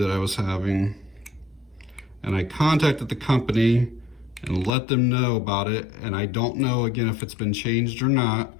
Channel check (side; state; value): right; drops out; at 4.7 s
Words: I was having. And I contacted the company and let them know about it, and I don't know, again, if it's been changed or not.